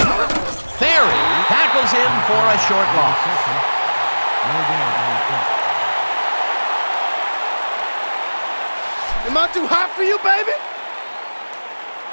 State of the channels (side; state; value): both; inverted; correlation -1.00